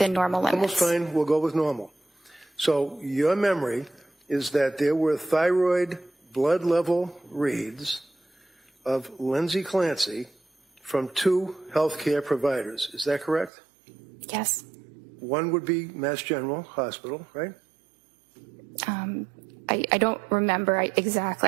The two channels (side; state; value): left; drops out; at 13.5 s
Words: normal limits. Almost fine. We'll go with normal. So your memory is that there were thyroid blood level reads of Lindsay Clancy from 2 healthcare providers. Is that correct? Yes. One would be Mass General Hospital, right? I don't remember